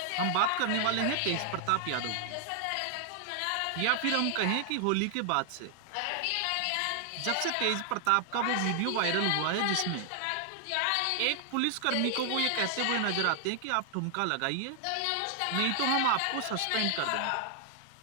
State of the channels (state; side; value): different; both; correlation 0.00